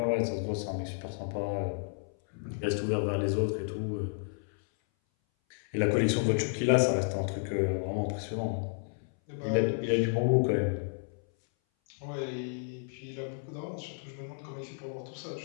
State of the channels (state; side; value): silent; right; 57 dB below the other